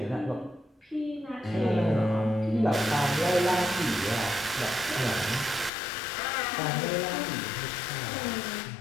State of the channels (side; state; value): right; drops out; at 5.7 s